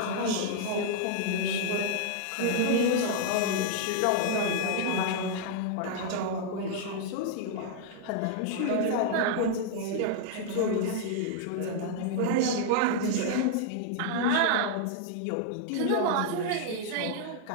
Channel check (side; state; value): both; different; correlation -0.01